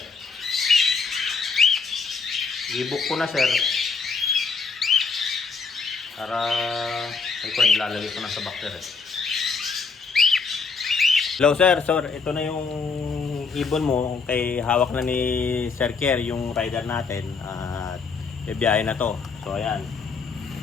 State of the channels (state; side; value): quieter; right; 4.8 dB